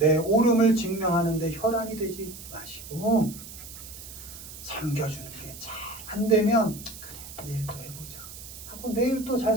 옳음을 증명하는데 혈안이 되지 마시고 섬겨주는 게 잘 안 되면 그래 내일 또 해보자 하고 내일 또 잘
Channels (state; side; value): noise; right; hiss, 14 dB below the sound